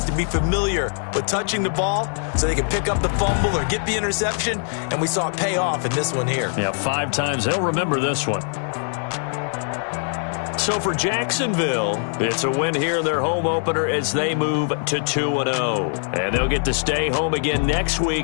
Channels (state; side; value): silent; right; 61 dB below the other